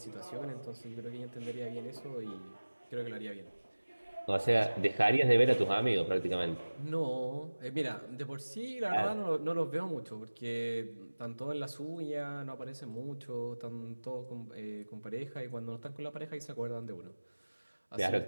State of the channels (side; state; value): both; inverted; correlation -1.00